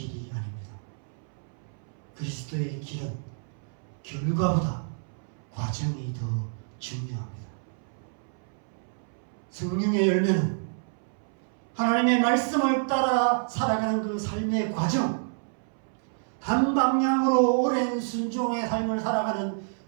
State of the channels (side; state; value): left; silent; 59 dB below the other